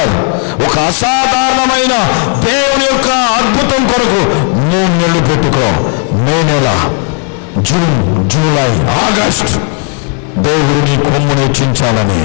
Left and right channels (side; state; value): right; quieter; 35.9 dB